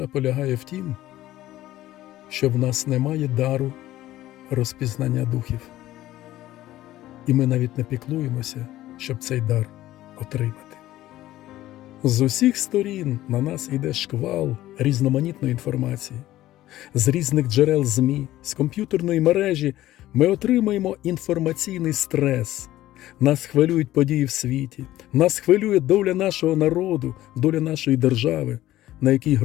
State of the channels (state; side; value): quieter; right; 14.9 dB